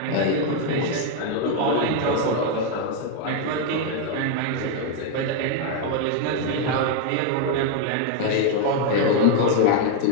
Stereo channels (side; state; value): both; different; correlation 0.00